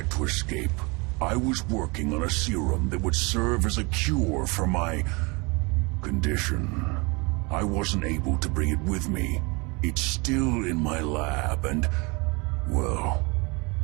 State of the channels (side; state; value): left; quieter; 28.0 dB